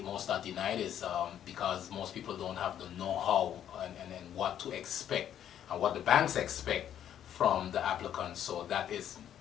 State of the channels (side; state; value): right; quieter; 10.2 dB